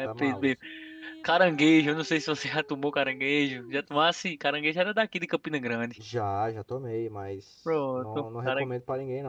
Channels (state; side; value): identical; both; correlation 1.00